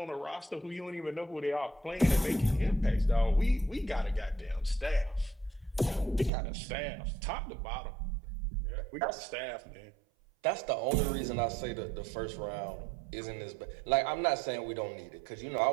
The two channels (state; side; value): drops out; left; at 6.3 s